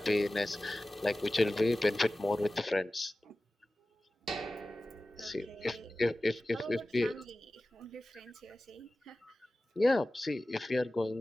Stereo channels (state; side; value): normal; both; correlation 0.96